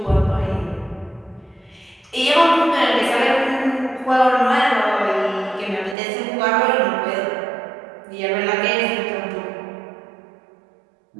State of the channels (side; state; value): left; drops out; at 6.0 s